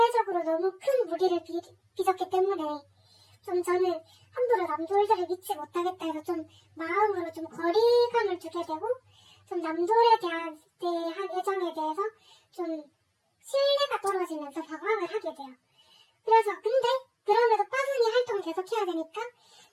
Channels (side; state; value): both; identical; correlation 1.00